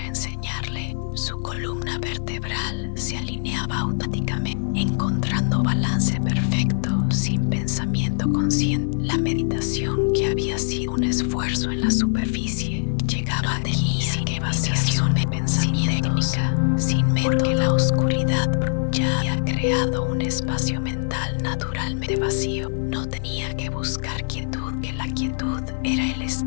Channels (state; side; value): silent; right; digital silence